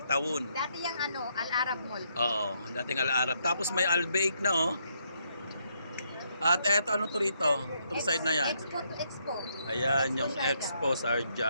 Dati yung Al-Arab Mall. Oo, dating Al-Arab. Tapos may Al-Baik na, oh. At eto, ano to rito? Itong side na yan. Expo to Expo. Ayan, yung Expo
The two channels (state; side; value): inverted; both; correlation -0.75